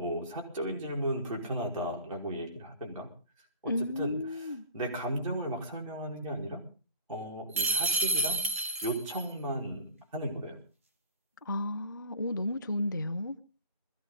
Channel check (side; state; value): both; inverted; correlation -0.42